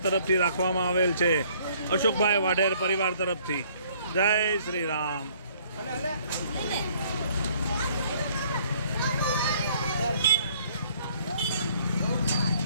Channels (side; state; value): both; inverted; correlation -0.60